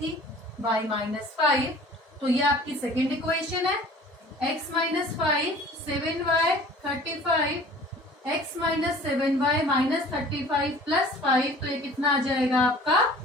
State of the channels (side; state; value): both; normal; correlation 0.47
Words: y minus 5। तो ये आपकी सेकेंड इक्वेशन है। x minus 5, 7y 35, x minus 7y minus 35 plus 5, तो ये कितना आ जाएगा आपका?